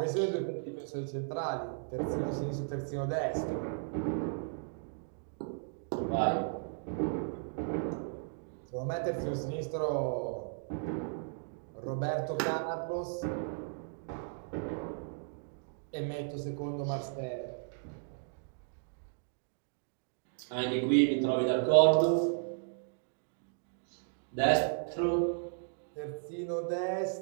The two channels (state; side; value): silent; left; digital silence